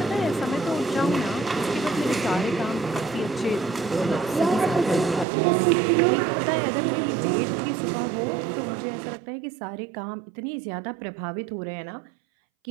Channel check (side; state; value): left; drops out; at 5.2 s